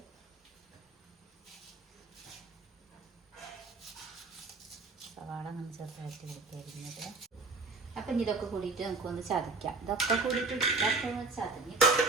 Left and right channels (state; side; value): quieter; left; 3.6 dB